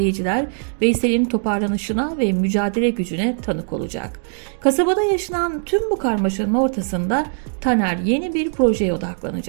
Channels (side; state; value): left; silent; 58 dB below the other